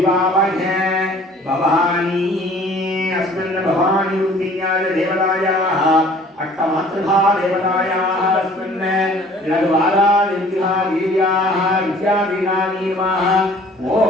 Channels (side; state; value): both; normal; correlation 0.52